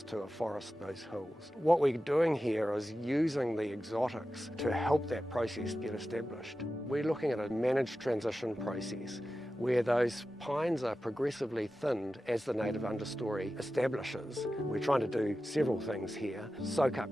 to afforest those hills. What we're doing here is using the exotics to help that process get established. We're looking at a managed transition process where those pines are progressively thinned as the native understory establishes. We're trying to do several things here. Soak up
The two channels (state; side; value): normal; both; correlation 0.93